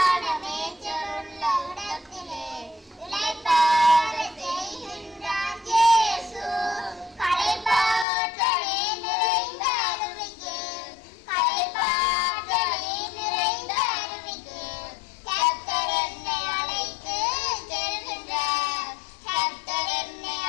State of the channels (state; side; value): drops out; right; at 8.1 s